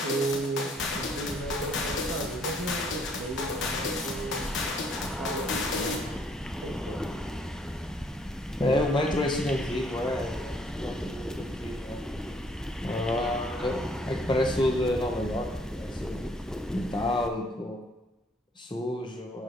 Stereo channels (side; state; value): both; normal; correlation 0.64